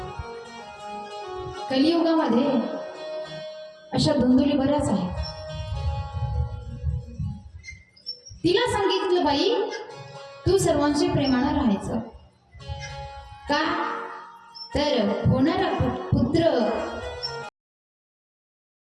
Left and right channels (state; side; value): identical; both; correlation 1.00